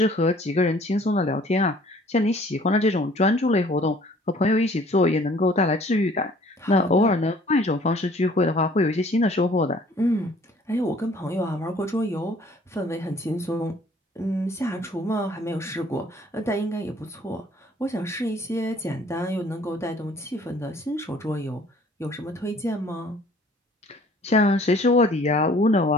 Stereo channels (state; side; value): normal; both; correlation 0.55